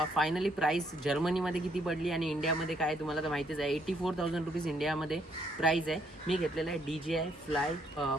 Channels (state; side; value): normal; both; correlation 0.71